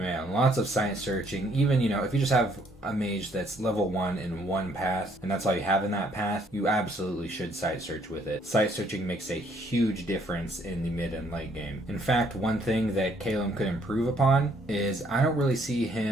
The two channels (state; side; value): normal; both; correlation 0.66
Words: lots of site searching. Even, if you just have a mage that's level 1 in one path, and that's all you have in that path, you absolutely should site search with it. Site searching makes a huge difference in the mid and late game. In fact, one thing that Kaelen could improve upon is I don't really see